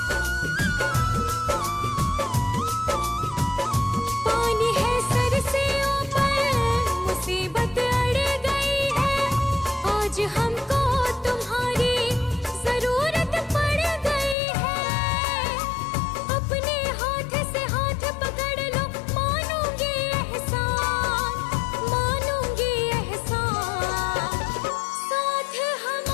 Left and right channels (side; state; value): right; drops out; at 14.4 s